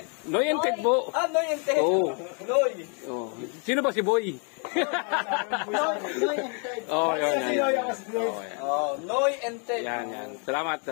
Noy and Ted po. Noy and Ted. Oo. Noy. Oh. Sino ba si Boy? Oh, yan. Noy and Ted. Yan. Salamat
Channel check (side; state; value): right; quieter; 39.1 dB